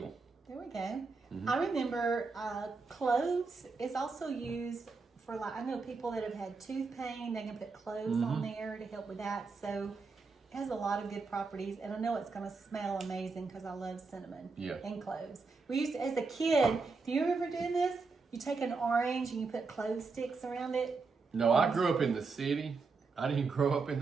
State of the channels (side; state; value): left; quieter; 4.4 dB